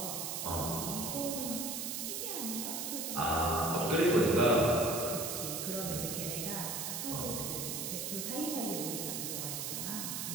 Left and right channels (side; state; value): right; noise; hiss, 3 dB below the sound